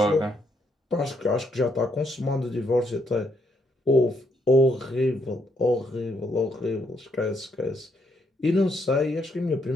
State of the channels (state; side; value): normal; both; correlation 0.74